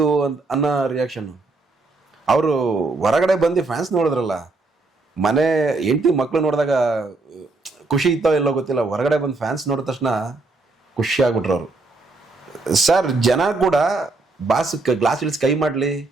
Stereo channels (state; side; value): quieter; left; 3.4 dB